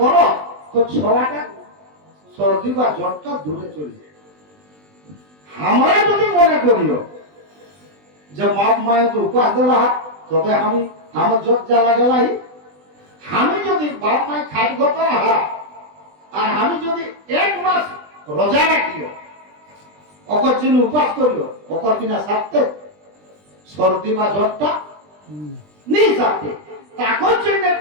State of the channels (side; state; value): left; late; 20 ms